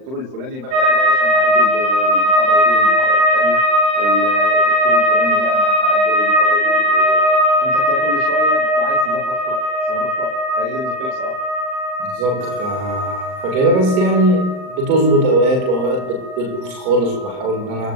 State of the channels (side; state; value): left; late; 39 ms